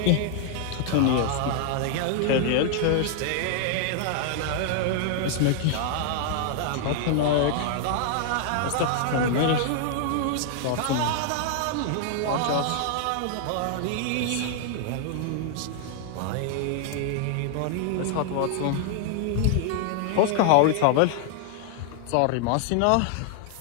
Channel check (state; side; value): different; both; correlation 0.00